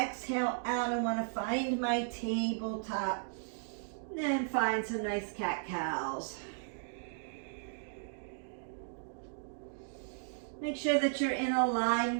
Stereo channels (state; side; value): silent; left; digital silence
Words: out, I want to find my tabletop. Then find some nice cat-cows. Make sure that you're in